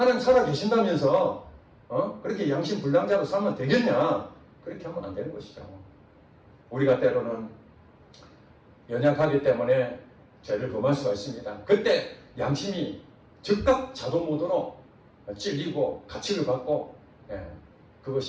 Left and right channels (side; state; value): both; identical; correlation 1.00